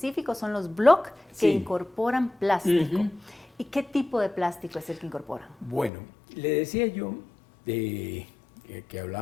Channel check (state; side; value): drops out; right; at 5.9 s